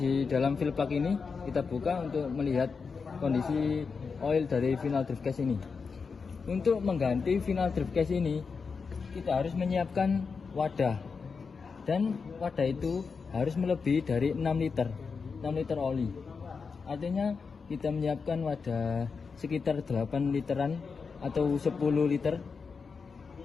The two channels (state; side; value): quieter; right; 5.2 dB